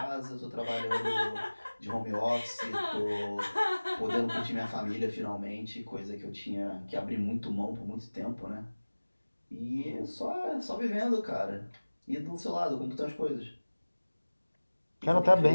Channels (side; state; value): both; inverted; correlation -1.00